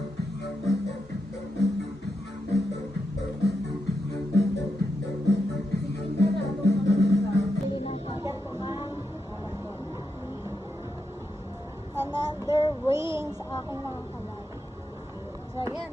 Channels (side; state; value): both; normal; correlation 0.85